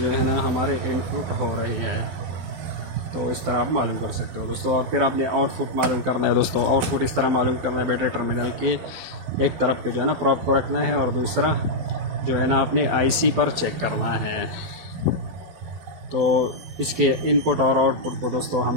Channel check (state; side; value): late; left; 12 ms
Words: है ना हमारे इनपुट हो रही है। तो इस तरह आप मालूम कर सकते हो दोस्तों। और फिर आपने आउटपुट मालूम करना है दोस्तों। आउटपुट इस तरह मालूम करना है, बैटरी टर्मिनल के एक तरफ पे जो है ना प्रोब को रखना है और दूसरा जो है ना अपने IC पर चेक करना है। तो इसके इनपुट और आउटपुट को दोस्तों